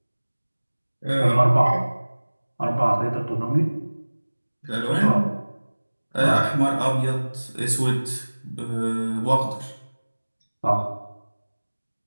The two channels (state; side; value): inverted; both; correlation -1.00